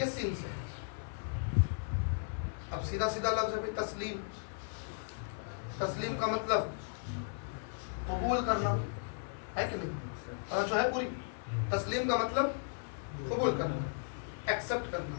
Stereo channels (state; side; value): silent; right; 54 dB below the other